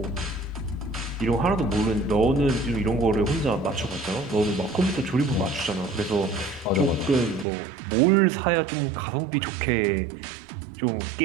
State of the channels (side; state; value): left; drops out; at 7.5 s